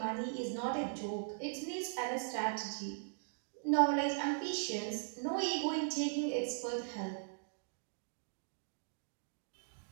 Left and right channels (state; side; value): silent; left; digital silence